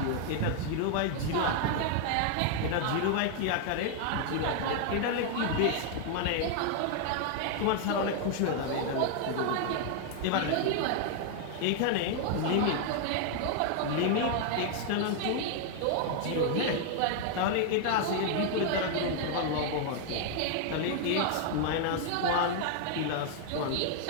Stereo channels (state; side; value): different; both; correlation 0.00